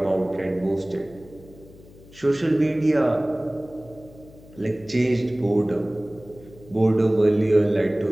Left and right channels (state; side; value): noise; left; hum, 22 dB below the sound